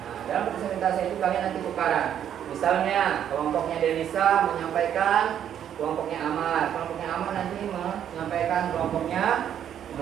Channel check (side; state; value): left; quieter; 9.7 dB